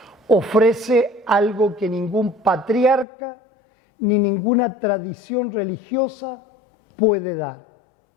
ofrece algo que ningún patriarca ni ninguna tradición religiosa puede dar:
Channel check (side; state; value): right; drops out; at 3.1 s